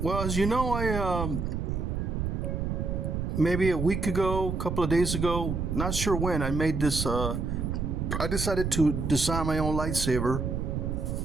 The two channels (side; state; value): right; noise; rumble, 2 dB below the sound